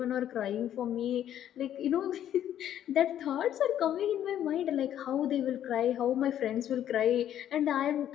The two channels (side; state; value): right; quieter; 10.8 dB